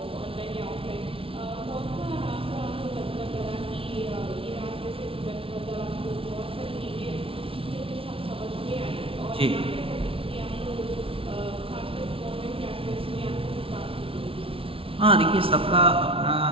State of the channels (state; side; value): late; left; 0.26 ms